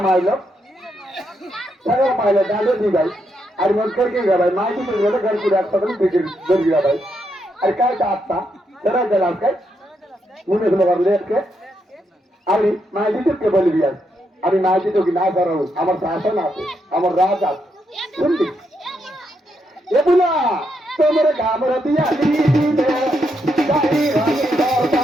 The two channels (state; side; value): normal; both; correlation 0.80